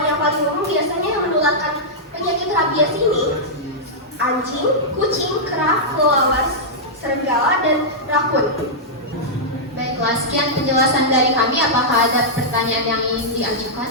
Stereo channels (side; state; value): both; normal; correlation -0.09